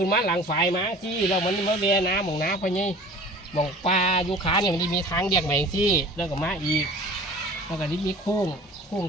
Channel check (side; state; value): both; normal; correlation 0.44